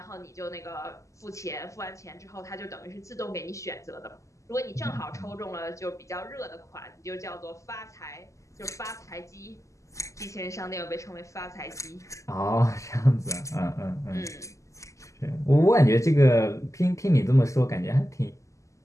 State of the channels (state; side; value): late; right; 0.15 ms